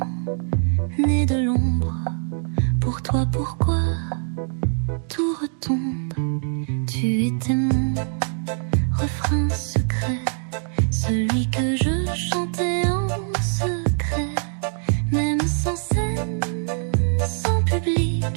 née de l'ombre. Pour toi, pourquoi tout retombe? Tu étais mon refrain secret, celui que je chantais en secret. Même sans scène, sans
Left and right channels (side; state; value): left; silent; digital silence